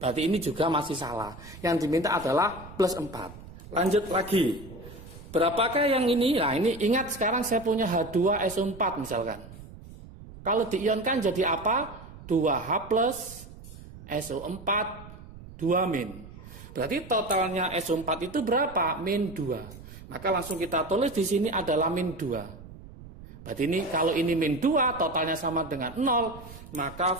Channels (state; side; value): noise; right; rumble, 17 dB below the sound